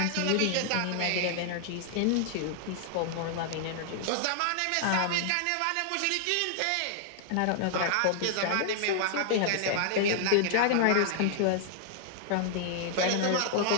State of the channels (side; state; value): both; different; correlation -0.01